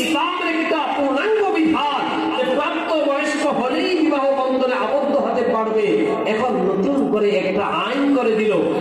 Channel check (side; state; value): both; identical; correlation 1.00